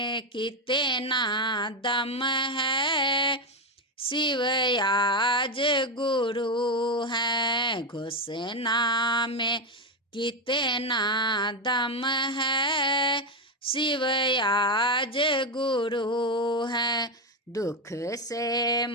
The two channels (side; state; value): both; normal; correlation 0.08